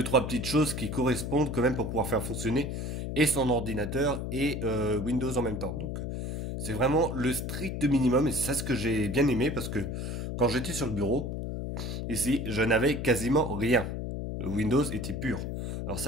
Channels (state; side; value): noise; left; hum, 4 dB below the sound